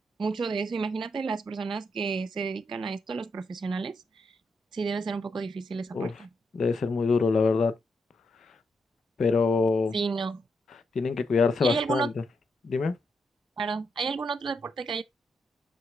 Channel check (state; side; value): normal; both; correlation 0.81